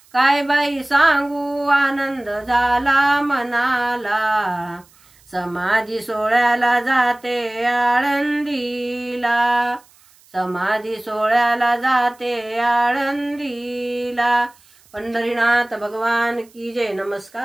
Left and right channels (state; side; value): noise; right; hiss, 29 dB below the sound